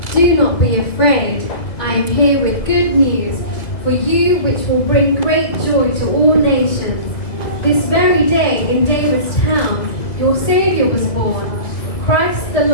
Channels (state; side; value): late; right; 1.7 ms